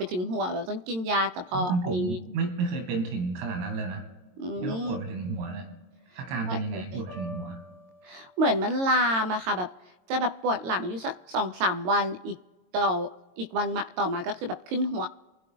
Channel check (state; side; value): late; left; 22 ms